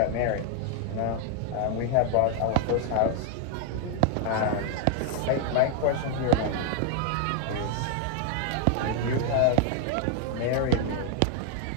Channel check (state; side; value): different; both; correlation 0.00